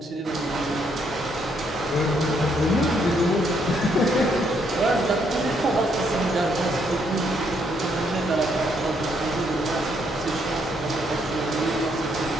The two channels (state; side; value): normal; both; correlation 0.72